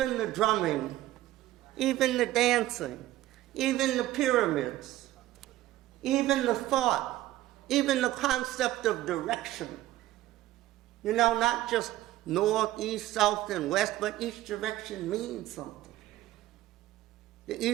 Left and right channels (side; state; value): left; quieter; 15.1 dB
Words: the drumming, even the dancing, even the pyramids, even the thought, even the concept of direction. You know, not just north, east, south, and west, but each direction means something. The